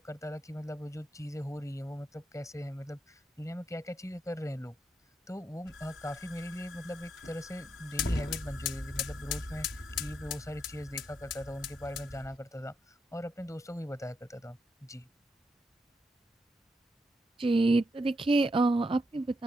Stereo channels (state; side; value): normal; both; correlation 0.82